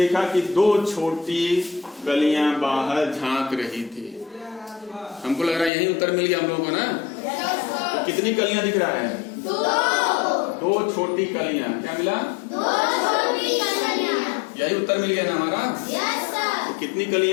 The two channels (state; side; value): drops out; right; at 5.7 s